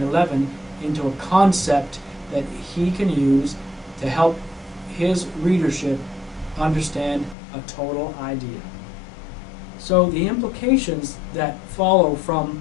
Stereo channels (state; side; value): drops out; right; at 7.4 s